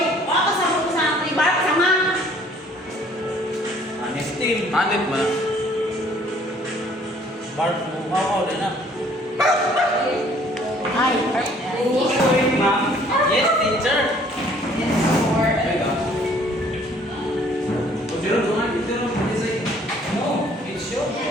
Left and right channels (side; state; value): both; normal; correlation 0.58